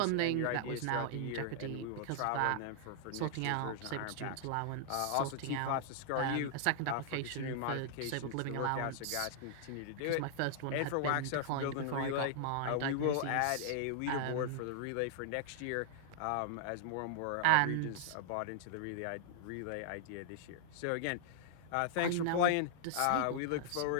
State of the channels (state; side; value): different; both; correlation -0.01